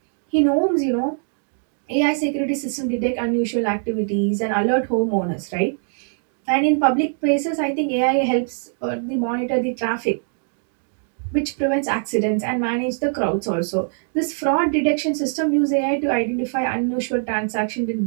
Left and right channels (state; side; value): silent; left; 62 dB below the other